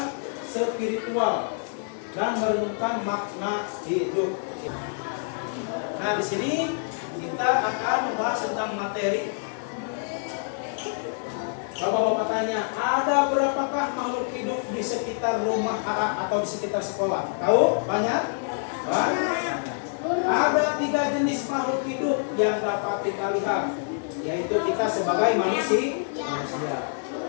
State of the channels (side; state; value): right; silent; digital silence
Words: spiritual dan merenungkan makna hidup. Nah, di sini kita akan membahas tentang materi. Bapak-bapak tanya, ada berapakah makhluk hidup di sekitar rumah atau di sekitar sekolah? Tahu? Banyak? Banyak. Ada 3 jenis makhluk hidup yang dapat kita lihat, yaitu kita sebagai manusia.